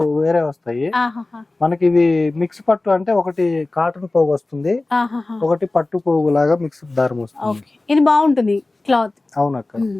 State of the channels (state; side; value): quieter; right; 3.0 dB